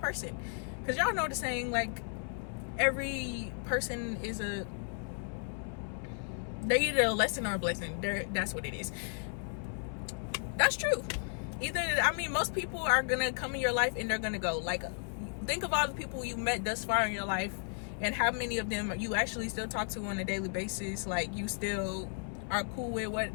Because y'all know the saying, like, every person is they're either a lesson or a blessing. That's what it is. That's true. Either, I mean, most people are gonna come in your life and they're gonna go. Like, think of all the people you met thus far in your life and how many of them you actually still talk to on a daily basis. Like, you still are cool with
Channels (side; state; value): right; silent; 55 dB below the other